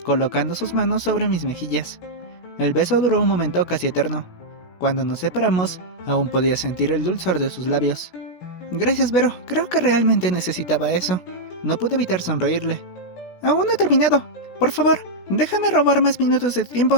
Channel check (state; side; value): late; right; 16 ms